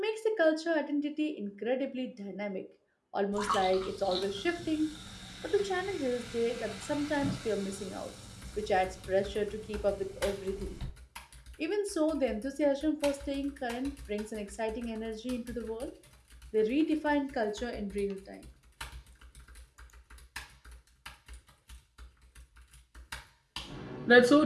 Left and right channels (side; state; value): both; identical; correlation 1.00